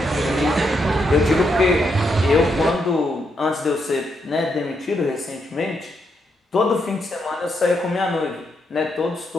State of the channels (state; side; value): normal; both; correlation 0.79